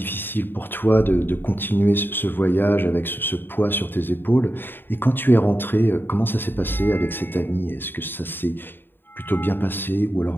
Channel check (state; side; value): late; right; 0.096 ms